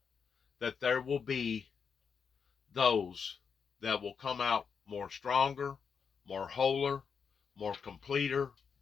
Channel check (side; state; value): right; quieter; 6.3 dB